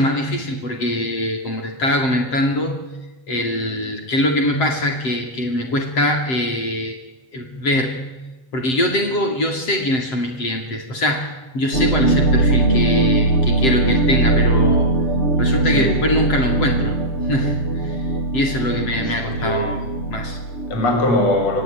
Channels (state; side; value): late; right; 7.7 ms